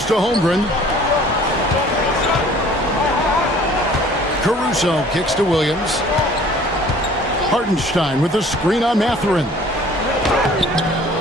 to Holmgren. Caruso kicks to Williams. Hartenstein with the screen on Mathurin.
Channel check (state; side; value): normal; both; correlation 0.52